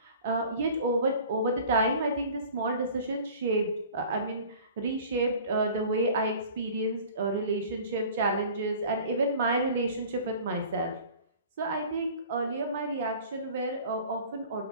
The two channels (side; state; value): both; inverted; correlation -0.44